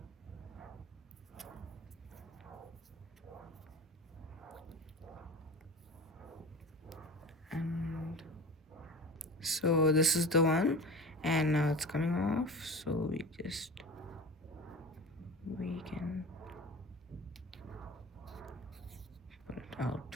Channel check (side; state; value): both; normal; correlation 0.33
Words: And so this is the one, and now it's coming off. So we can pull it out.